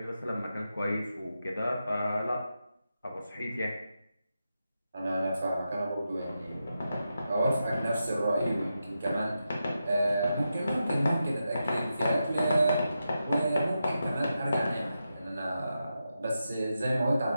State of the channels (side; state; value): both; inverted; correlation -0.88